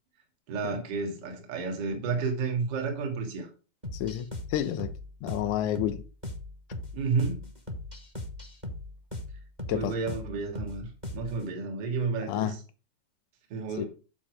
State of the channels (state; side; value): late; left; 2.1 ms